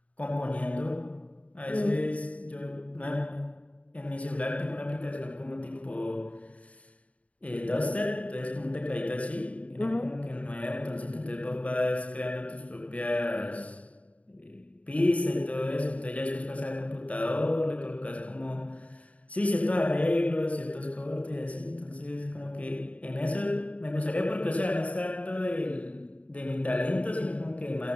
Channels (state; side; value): late; right; 0.067 ms